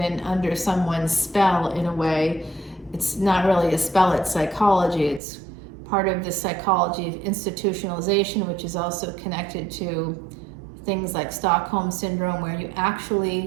under someone's spell in a way. It's not really a spell, it's psychology. It's part of the psychology of institutionalization, which is also connected to things like Stockholm Syndrome, where you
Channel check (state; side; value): drops out; left; at 5.2 s